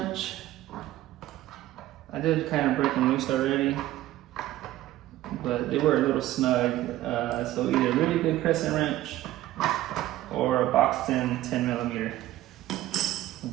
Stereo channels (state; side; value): quieter; left; 14.9 dB